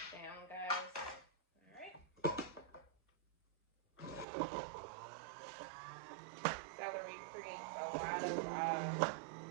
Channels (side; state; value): left; drops out; at 4.2 s